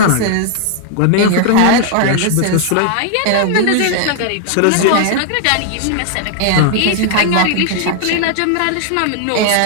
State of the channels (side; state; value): both; different; correlation 0.00